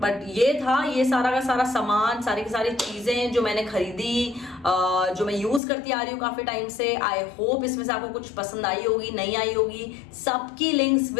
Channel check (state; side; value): drops out; right; at 5.6 s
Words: ये था, ये सारा का सारा सामान, सारी की सारी चीजें जो मैंने खरीदी, जो मैं यूज करती आ रही हूँ काफी टाइम से। आई होप इसमें से आपको कुछ पसंद आई होगी, नहीं आई होगी, सबकी links